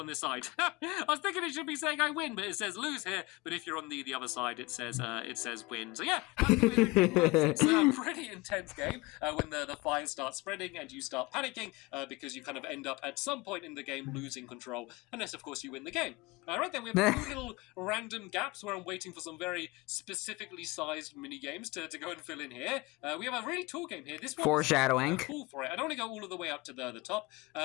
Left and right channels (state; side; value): quieter; right; 22.8 dB